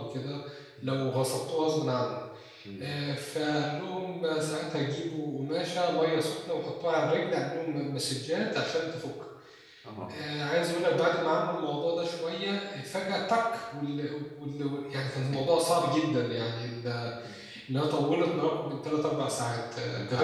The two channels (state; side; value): identical; both; correlation 1.00